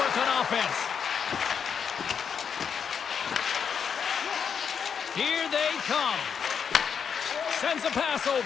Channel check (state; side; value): quieter; right; 7.0 dB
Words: on offense. Here they come. Sends a pass